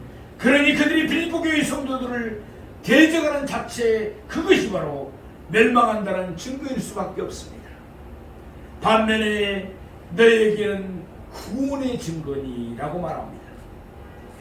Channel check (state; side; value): identical; both; correlation 1.00